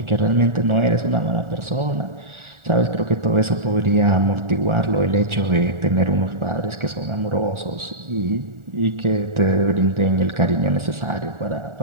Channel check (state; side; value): late; left; 1.4 ms